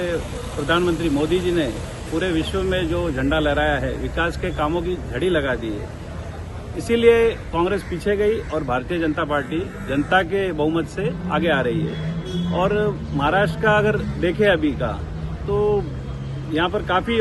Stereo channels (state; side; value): identical; both; correlation 1.00